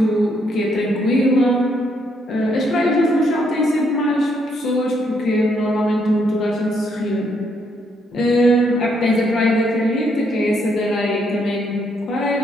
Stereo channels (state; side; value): normal; both; correlation 0.73